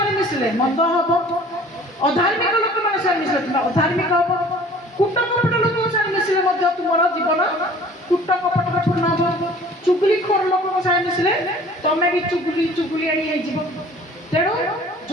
मिसिले मंद हबो अधार्मिक लोक मानक संगे मिसिले तुमे अधार्मिक हबो कुट कपट लोक संगे मिसिले मध्य तुमर जीवन कुट कपट पूर्ण हबो चुगली खोर लोक संगे मिसिले तमे भी चुगली आनी हे जीव तेणु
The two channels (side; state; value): both; normal; correlation 0.49